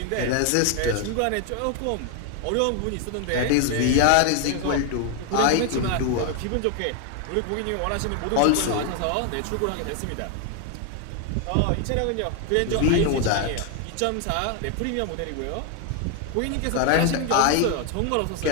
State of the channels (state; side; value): different; both; correlation 0.01